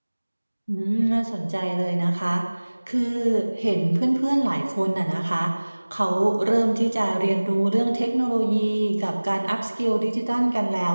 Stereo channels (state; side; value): inverted; both; correlation -1.00